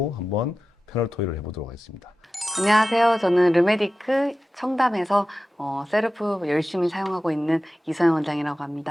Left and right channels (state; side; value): normal; both; correlation 0.94